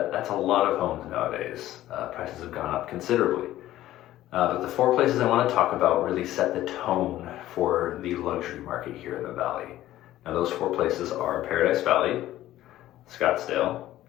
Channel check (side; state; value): right; quieter; 14.3 dB